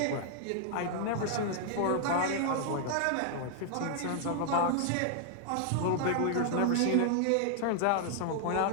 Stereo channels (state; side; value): different; both; correlation 0.00